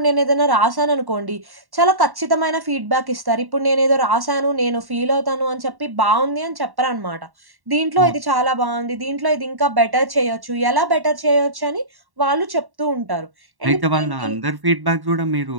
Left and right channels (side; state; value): left; late; 1.1 ms